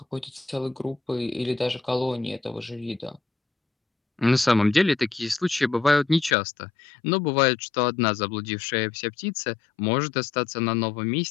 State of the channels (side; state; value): right; drops out; at 6.4 s